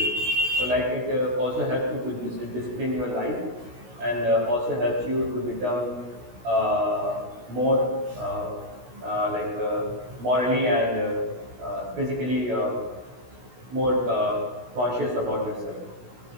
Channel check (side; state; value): left; late; 16 ms